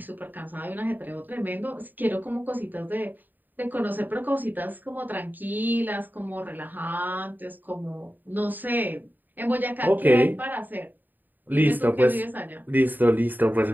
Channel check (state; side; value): late; left; 0.088 ms